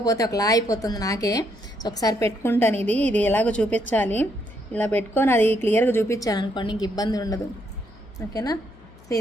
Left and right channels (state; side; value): noise; left; hum, 24 dB below the sound